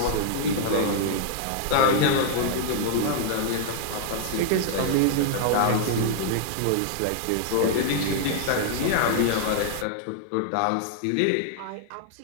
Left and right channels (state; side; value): different; both; correlation -0.01